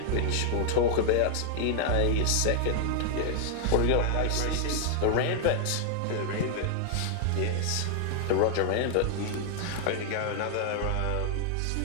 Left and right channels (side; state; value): both; different; correlation 0.00